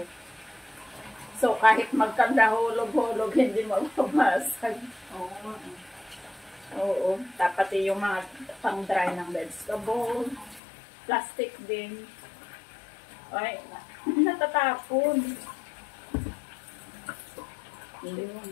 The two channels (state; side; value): drops out; right; at 10.6 s